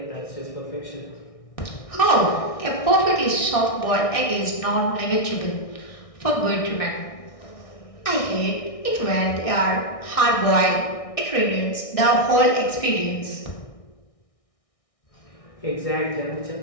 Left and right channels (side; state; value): right; late; 1.6 ms